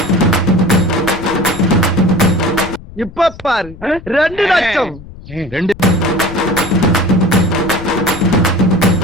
இப்ப பாரு 2 லட்சம்.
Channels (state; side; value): noise; left; rumble, 17 dB below the sound